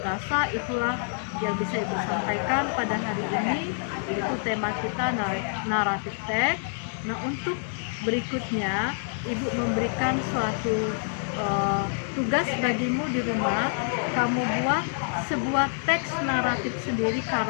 rasa itulah yang bisa Ibu sampaikan pada hari ini, yaitu tema kita naratif teks. Nah, untuk berikutnya Ibu memberikan suatu tugas bagimu di rumah. Kamu buat sebuah teks naratif sendiri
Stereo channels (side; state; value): right; silent; digital silence